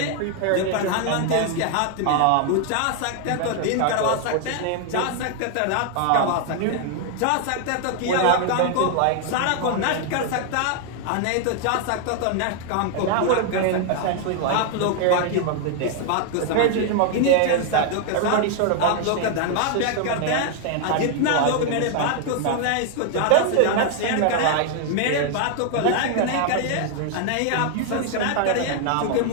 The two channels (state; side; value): different; both; correlation 0.00